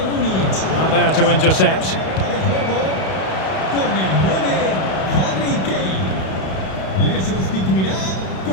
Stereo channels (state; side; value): late; right; 32 ms